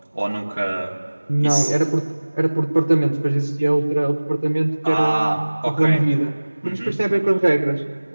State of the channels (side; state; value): both; inverted; correlation -1.00